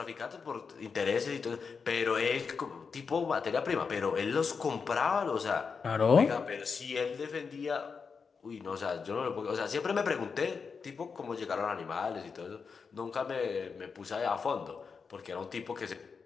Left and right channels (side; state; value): right; quieter; 5.5 dB